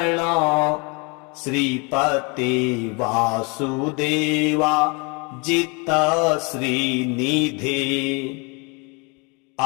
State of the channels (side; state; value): right; quieter; 31.2 dB